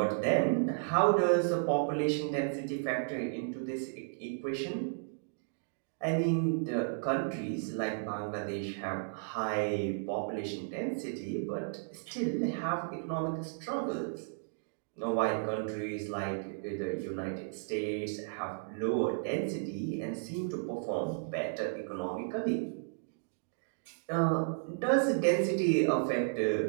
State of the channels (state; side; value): silent; left; digital silence